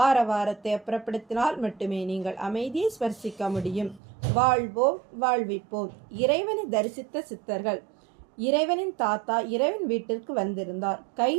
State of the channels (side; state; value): left; drops out; at 4.0 s